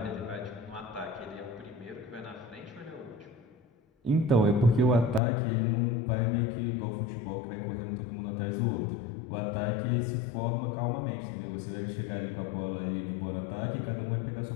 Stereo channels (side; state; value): right; drops out; at 5.2 s